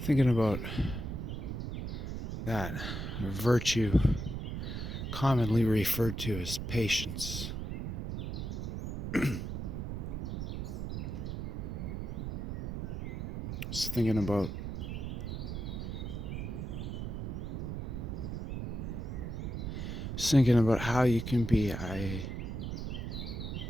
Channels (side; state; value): right; noise; rumble, 4 dB below the sound